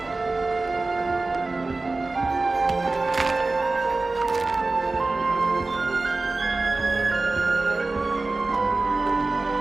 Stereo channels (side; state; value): left; quieter; 3.4 dB